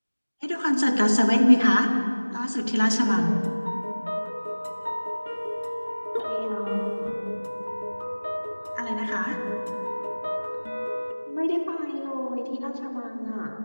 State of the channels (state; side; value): inverted; both; correlation -1.00